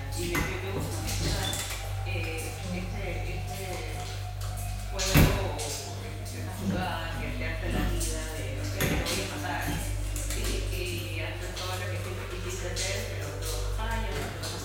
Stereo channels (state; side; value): identical; both; correlation 1.00